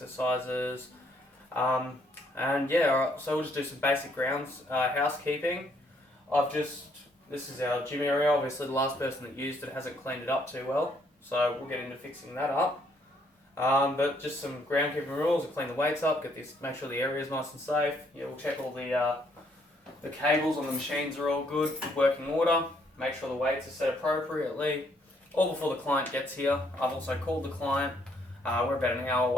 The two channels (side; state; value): both; normal; correlation 0.69